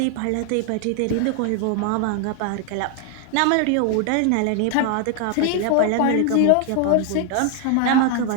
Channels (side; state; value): both; different; correlation 0.00